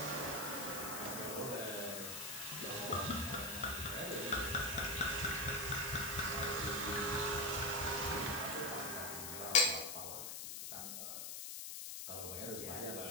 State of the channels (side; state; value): left; noise; hiss, 5 dB below the sound